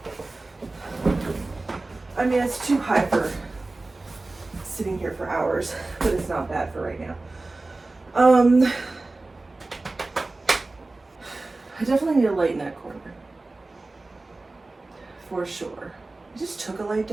I mean, it's too high for sitting here for hours, but it's not bad for right now. I definitely need a light in that corner, for sure. I just took a light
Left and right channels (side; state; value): left; quieter; 3.2 dB